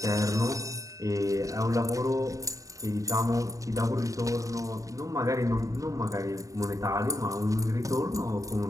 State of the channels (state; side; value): late; left; 0.16 ms